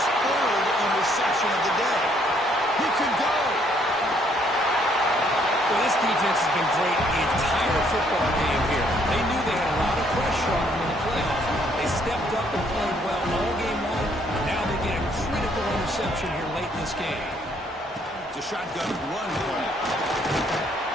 third interception of the day. He could go. Well, this defense has been great the entire football game here. They knew they had a lot of pressure on them in the playoffs. They stepped up and played well all game long. Now they get a critical interception here late in this game. It's a shotgun run play.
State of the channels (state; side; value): normal; both; correlation 0.67